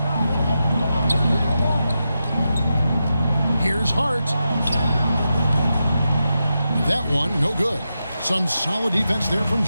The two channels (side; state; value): both; inverted; correlation -0.89